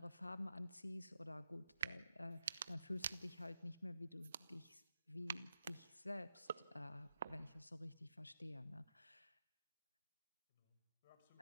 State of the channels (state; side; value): inverted; both; correlation -0.87